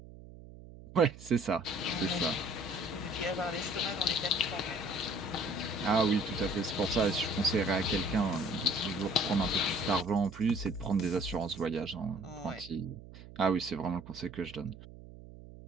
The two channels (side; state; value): right; noise; hum, 17 dB below the sound